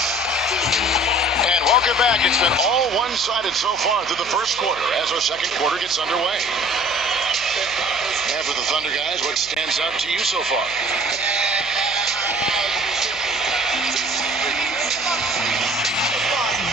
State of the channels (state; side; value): noise; left; hum, 23 dB below the sound